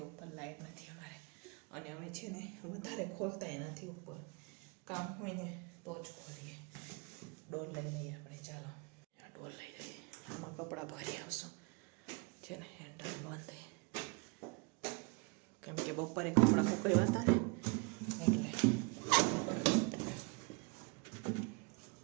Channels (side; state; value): left; quieter; 31.7 dB